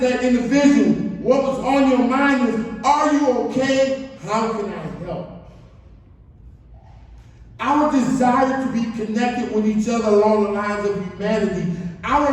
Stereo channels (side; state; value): both; identical; correlation 1.00